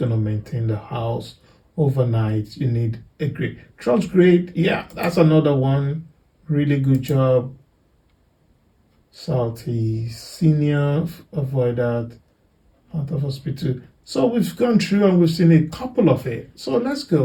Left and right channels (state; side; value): identical; both; correlation 1.00